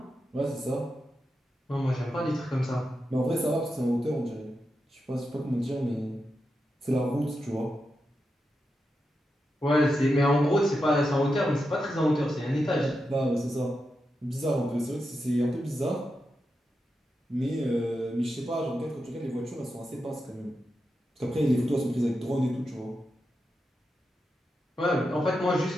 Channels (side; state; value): both; normal; correlation 0.88